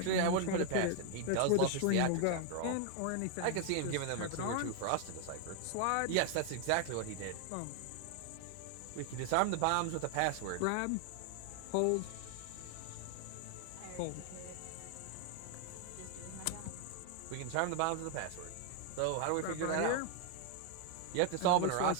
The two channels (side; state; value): both; different; correlation 0.00